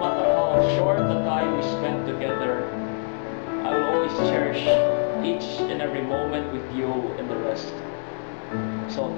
how short the time we spent together, I will always cherish each and every moment with you and the rest. So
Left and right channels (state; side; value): silent; right; digital silence